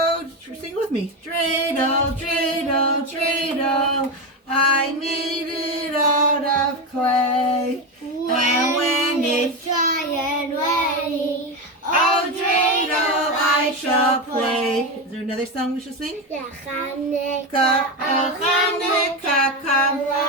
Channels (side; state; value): both; normal; correlation 0.15